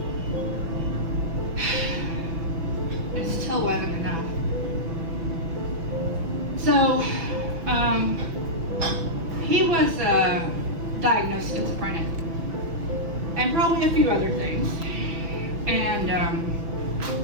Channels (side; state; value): left; late; 6.0 ms